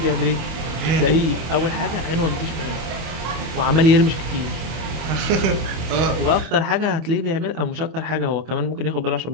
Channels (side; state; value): left; late; 25 ms